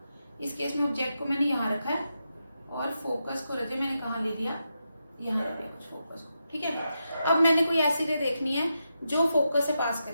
इस केस में ऑब्जेक्ट को मैंने यहाँ रखा है और फोकस को रखे मैंने कहाँ ले लिया, यहाँ रख लिया कुछ फोकस को। ठीक है, अब मैंने कोई ऐसी रे देखनी है जो फोकस से पास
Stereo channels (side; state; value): both; inverted; correlation -0.86